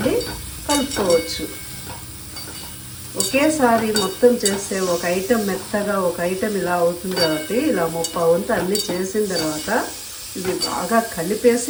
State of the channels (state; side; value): identical; both; correlation 1.00